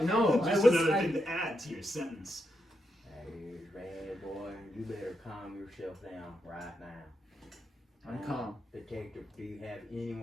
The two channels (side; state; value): both; normal; correlation 0.83